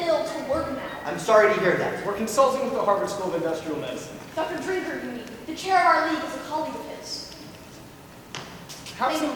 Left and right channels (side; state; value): both; identical; correlation 1.00